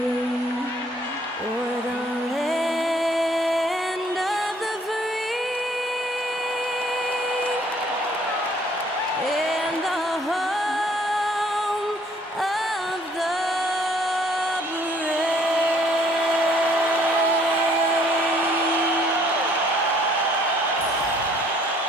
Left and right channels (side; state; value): both; normal; correlation 0.61